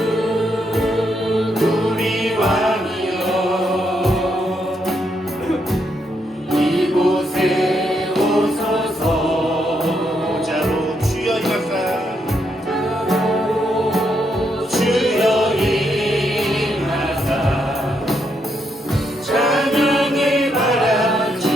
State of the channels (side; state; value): both; normal; correlation 0.78